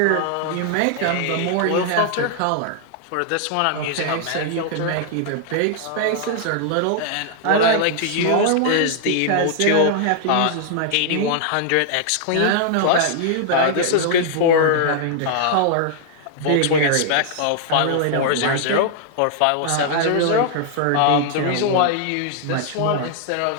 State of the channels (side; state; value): both; different; correlation -0.01